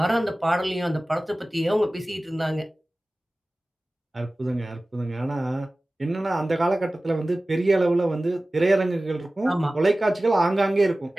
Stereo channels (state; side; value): normal; both; correlation 0.97